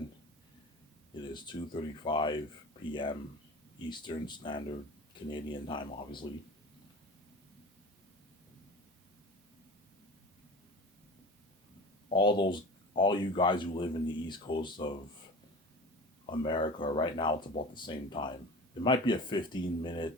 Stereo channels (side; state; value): both; normal; correlation 0.35